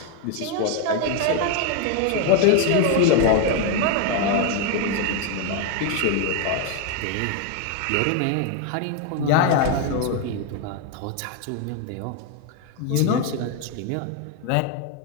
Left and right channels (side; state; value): both; different; correlation 0.01